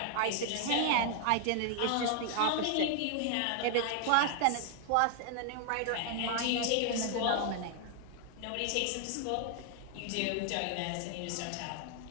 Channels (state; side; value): different; both; correlation 0.00